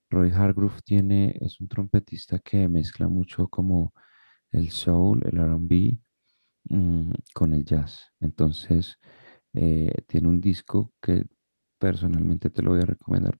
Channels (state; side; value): inverted; both; correlation -1.00